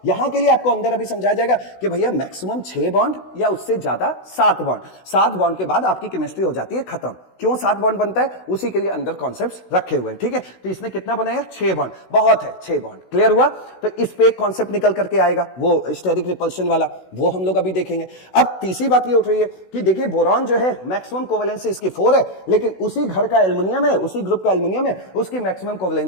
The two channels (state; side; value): late; right; 16 ms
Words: यहां के लिए आपको अंदर अभी समझाया जाएगा कि भैया मैक्सिमम 6 बॉन्ड या उससे ज्यादा 7 बॉन्ड, 7 बॉन्ड के बाद आपकी केमिस्ट्री हो जाती है खत्म। क्यों 7 बॉन्ड बनता है, उसी के लिए अंदर कॉन्सेप्ट्स रखे हुए हैं, ठीक है। तो इसने कितना बनाया, 6 बॉन्ड, बहुत है 6 बॉन्ड, क्लियर हुआ। तो इस पे एक कॉन्सेप्ट निकल करके आएगा, वो स्टेरिक रिपल्शन वाला, वो हम लोग अभी देखेंगे। अब तीसरी बात ये उठ रही है कि देखिए बोरॉन जो है मैक्सिमम कोवेलेंसी इसकी 4 है, लेकिन उसी घर का एल्युमिनियम है, उसी ग्रुप का एल्युमिनियम है, उसकी मैक्सिमम